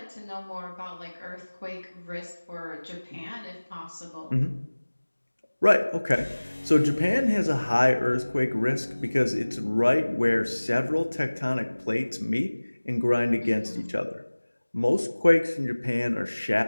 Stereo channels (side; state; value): both; inverted; correlation -1.00